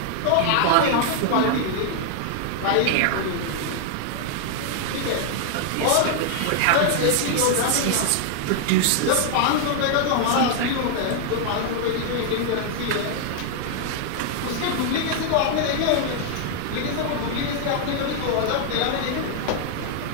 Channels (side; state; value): both; different; correlation 0.00